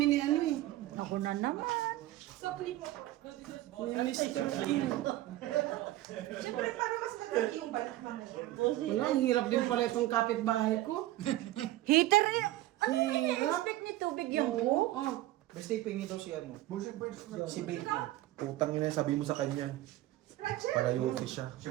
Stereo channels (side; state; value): left; quieter; 16.0 dB